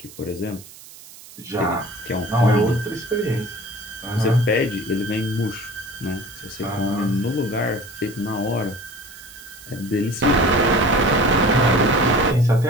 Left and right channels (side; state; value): right; noise; hiss, 19 dB below the sound